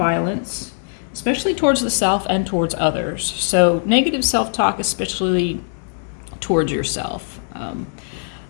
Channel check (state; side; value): silent; right; digital silence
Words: especially towards the self and towards others. So negative self-talk, especially towards yourself.